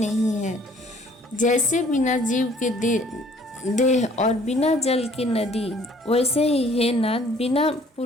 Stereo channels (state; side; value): normal; both; correlation 0.57